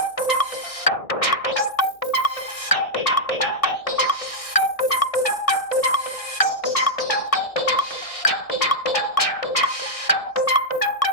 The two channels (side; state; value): right; late; 1.6 ms